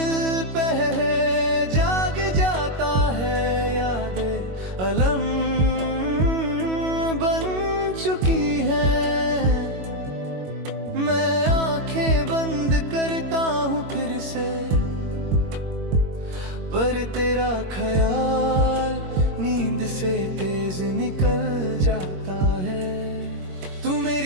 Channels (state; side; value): late; left; 21 ms